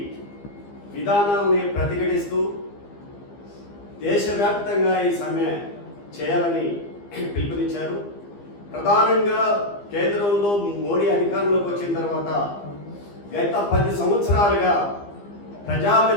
విధానాలని ప్రతిఘటిస్తూ దేశవ్యాప్తంగా ఈ సమ్మె చేయాలని పిలుపునిచ్చారు. ప్రధానంగా కేంద్రంలో మోడీ అధికారంలోకి వచ్చిన తర్వాత గత 10 సంవత్సరాలుగా ప్రజా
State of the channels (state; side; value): late; right; 15 ms